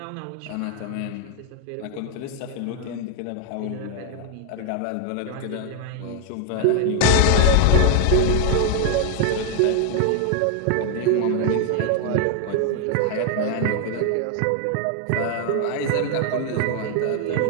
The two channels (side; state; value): both; different; correlation 0.00